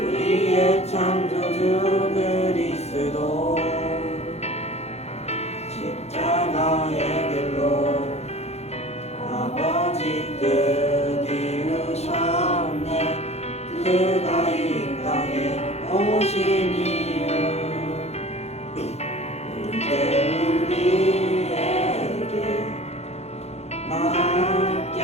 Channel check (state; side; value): late; right; 0.31 ms